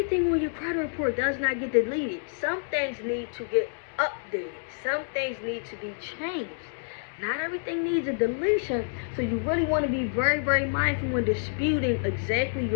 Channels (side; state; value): right; silent; 59 dB below the other